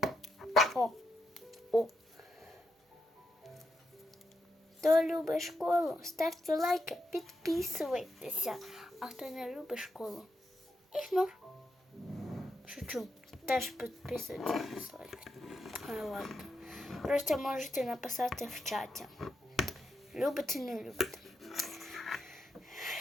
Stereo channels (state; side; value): normal; both; correlation 0.83